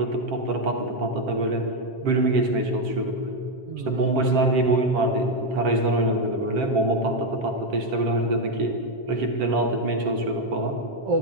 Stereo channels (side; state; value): left; late; 7.5 ms